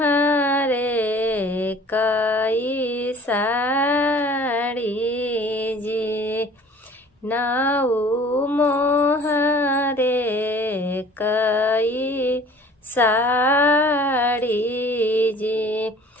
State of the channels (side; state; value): both; normal; correlation 0.49